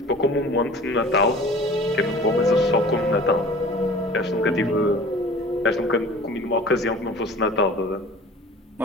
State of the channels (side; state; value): both; normal; correlation 0.44